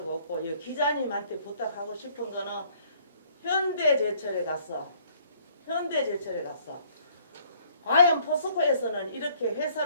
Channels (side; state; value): both; inverted; correlation -0.61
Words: 없고 이 기자님한테 부탁하고 싶은 거는 현대제철에 갔어. 과연 포스코에서는 이렇게